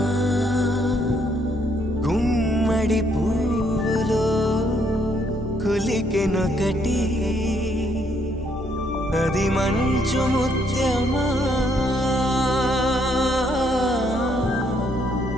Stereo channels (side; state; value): left; noise; hum, 13 dB below the sound